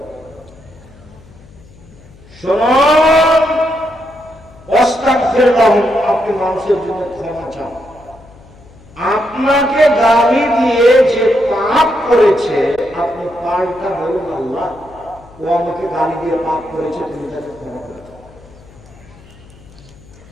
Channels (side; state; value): left; noise; hum, 23 dB below the sound